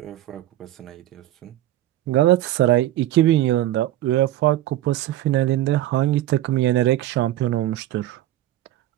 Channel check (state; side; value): quieter; left; 14.2 dB